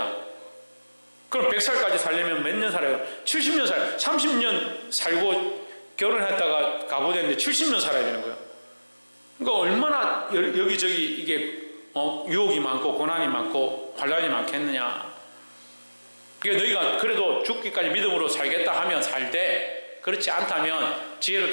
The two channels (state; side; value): inverted; both; correlation -1.00